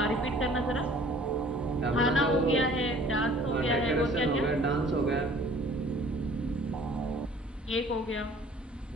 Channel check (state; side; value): normal; both; correlation 0.52